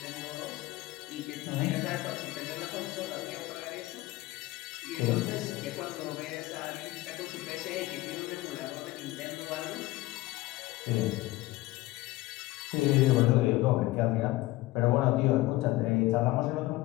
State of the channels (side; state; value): right; quieter; 18.4 dB